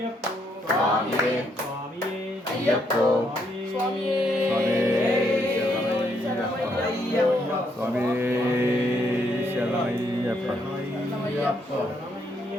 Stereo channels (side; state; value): both; normal; correlation 0.74